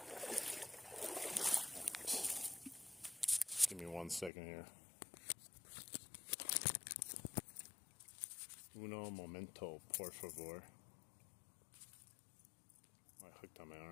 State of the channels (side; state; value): right; drops out; at 4.3 s